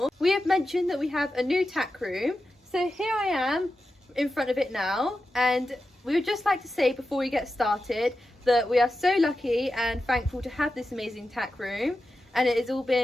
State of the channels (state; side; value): normal; both; correlation 0.91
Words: we have mentioned that we have a new tack room. So here I am in front of it now, and we would just like to say before we get started that we are so lucky and thankful to have this amazing tack room, and it has all